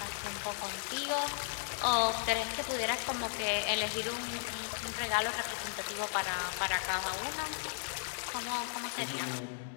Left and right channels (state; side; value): silent; right; digital silence